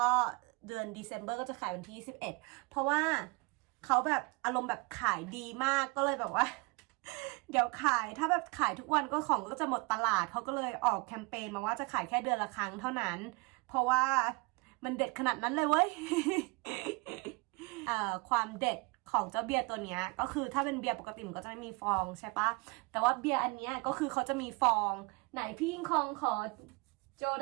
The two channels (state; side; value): quieter; left; 28.2 dB